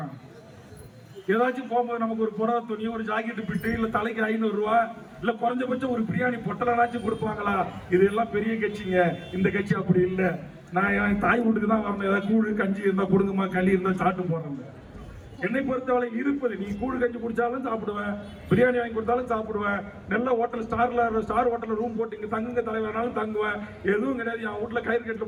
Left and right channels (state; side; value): identical; both; correlation 1.00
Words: ஏதாச்சும் போகும்போது நமக்கு ஒரு புடவை துணி, ஒரு ஜாக்கெட் பிட்டு, இல்ல தலைக்கு 500 ரூபா, இல்ல குறைஞ்சபட்சம் ஒரு பிரியாணி பொட்டலாச்சும் கொடுப்பாங்களா? இதெல்லாம் பெரிய கட்சிங்க. இந்த கட்சி அப்படி இல்லை. நான் என் தாய் வீட்டுக்கு தான் வரணும். ஏதாவது கூழு கஞ்சி இருந்தா கொடுங்கம்மா, களி இருந்தா சாப்பிட்டு போறேன். என்னை பொறுத்தவரை இருப்பது, நீ கூழு கஞ்சி குடிச்சாலும் சாப்பிடுவேன், பிரியாணி வாங்கி கொடுத்தாலும் சாப்பிடுவேன், நல்ல ஹோட்டல் ஸ்டார் ஹோட்டல்ல ரூம் போட்டு இங்க தங்குங்க தலைவரானாலும் தங்குவேன். எதுவும் கிடையாது. என் வீட்டுல கயிறு கட்டில